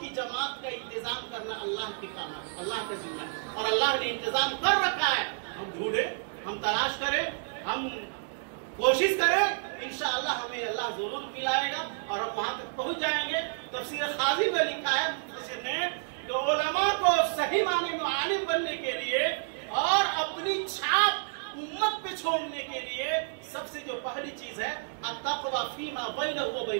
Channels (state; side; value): silent; left; digital silence